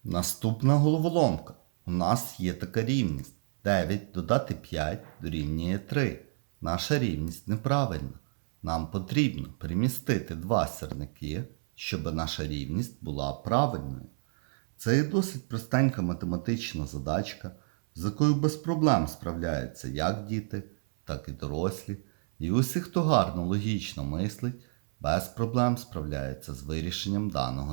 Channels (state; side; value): silent; left; 58 dB below the other